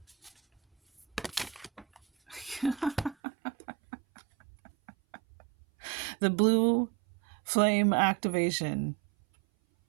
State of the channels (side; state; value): left; drops out; at 3.2 s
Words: The blue flame activation,